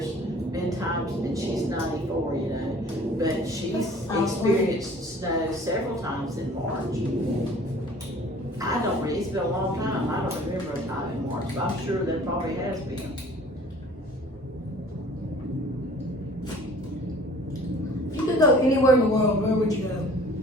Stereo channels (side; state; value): both; normal; correlation 0.50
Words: been times, and she's 94, you know, but she's experienced snow several times in March. I don't really, it's been a long time. I don't remember a time in March, but I'm sure there probably has been. If you could go anywhere in the world, where would you go?